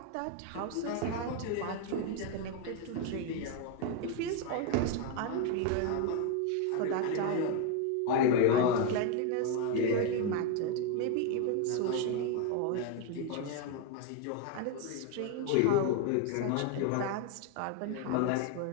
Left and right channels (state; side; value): different; both; correlation 0.01